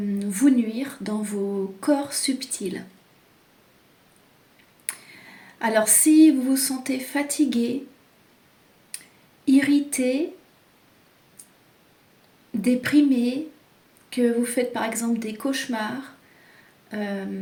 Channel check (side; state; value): both; identical; correlation 1.00